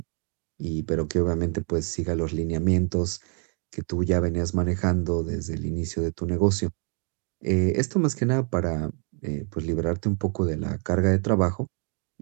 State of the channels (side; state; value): left; quieter; 39.3 dB